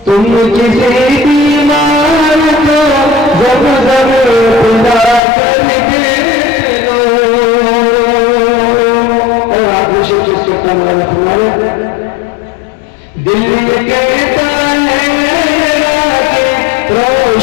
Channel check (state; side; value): drops out; right; at 5.2 s